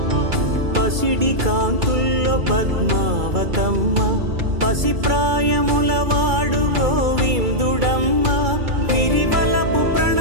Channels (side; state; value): left; late; 2.3 ms